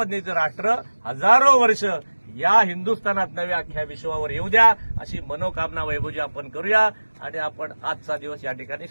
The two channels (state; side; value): inverted; both; correlation -1.00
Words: राष्ट्र हजारो वर्ष या हिंदुस्थानात नव्या अख्ख्या विश्वावर येऊ द्या, अशी मनोकामना वैभवजी आपण करूया आणि आपण आजचा दिवस या ठिकाणी